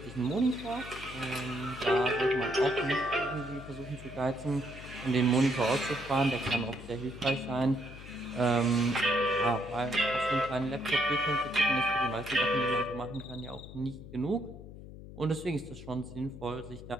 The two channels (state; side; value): noise; left; hum, 14 dB below the sound